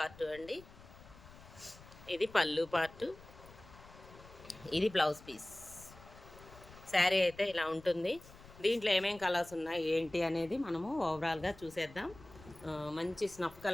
అండి, ఇది పళ్ళు పార్ట్, ఇది బ్లౌజ్ పీస్. శారీ అయితే ఇలా ఉంటుంది. దీంట్లో ఏమేం కలర్స్ ఉన్నాయి ఏంటి అనేది మనము ఓవరాల్గా చూసేద్దాం. మంచి స్నఫ్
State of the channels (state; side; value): noise; left; rumble, 20 dB below the sound